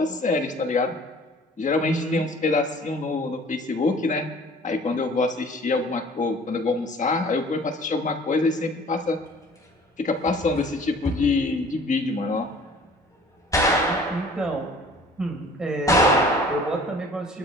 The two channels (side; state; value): both; normal; correlation 0.50